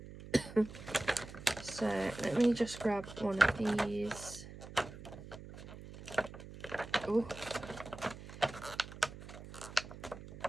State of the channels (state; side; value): noise; right; hum, 14 dB below the sound